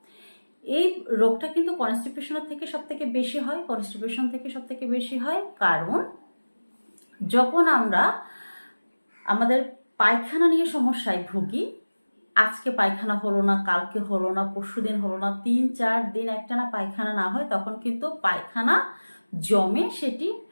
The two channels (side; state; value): both; inverted; correlation -1.00